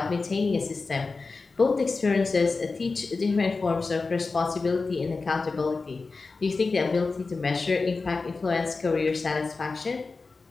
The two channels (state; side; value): quieter; right; 4.0 dB